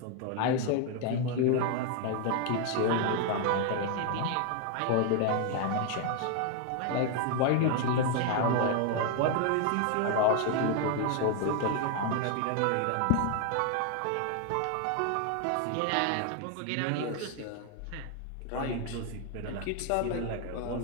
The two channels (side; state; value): both; different; correlation 0.01